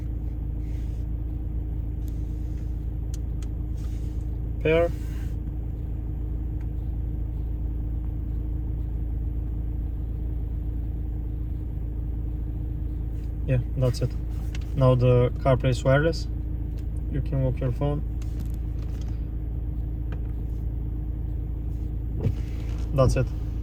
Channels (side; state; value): both; identical; correlation 1.00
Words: pair, yeah, that's it. Now the CarPlay is wireless. You can lock your phone. That's it.